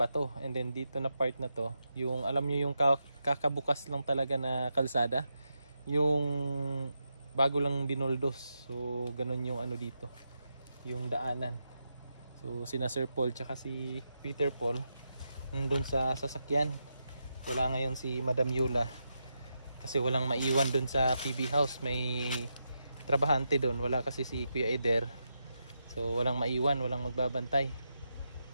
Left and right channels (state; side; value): inverted; both; correlation -0.85